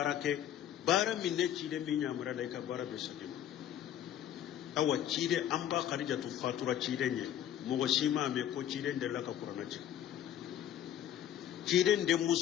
bara min ne cide min nyamura la ka bara be sagim awa cide amba khadijatu fatura cide nye mugo shima me ko cide de la ka qur'ana cide de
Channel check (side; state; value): right; quieter; 10.8 dB